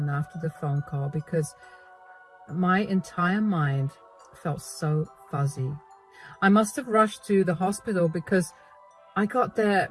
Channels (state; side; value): identical; both; correlation 1.00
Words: after the phone call because my entire mind felt so fuzzy. I must have rushed to the hospital because I got there